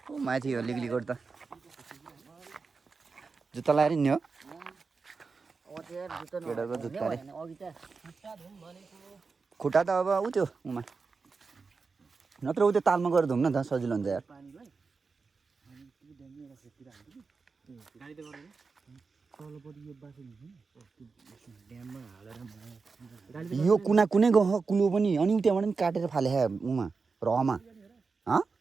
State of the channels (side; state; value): left; quieter; 4.6 dB